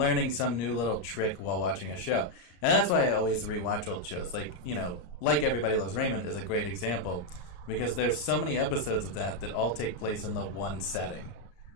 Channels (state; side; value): late; right; 34 ms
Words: some new little trick while watching a show. And that's why I always rewatch old shows. Like, like Everybody Loves Raymond is a great example, because there's so many episodes of that all take place in the one setting,